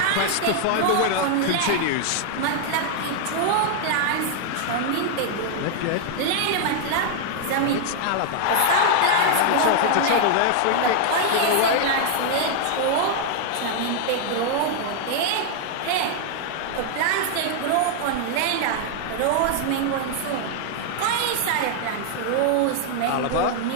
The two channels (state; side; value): different; both; correlation 0.00